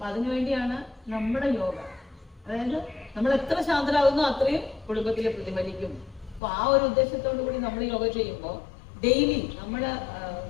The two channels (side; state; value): right; drops out; at 6.4 s